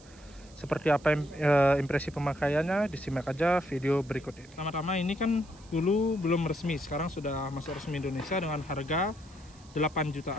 Seperti apa impresi pemakaiannya, disimak aja video berikut ini. Pertama-tama ini kan dulu belum resmi, sekarang sudah masuk resmi Indonesia dengan harga 8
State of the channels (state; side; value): noise; right; hiss, 25 dB below the sound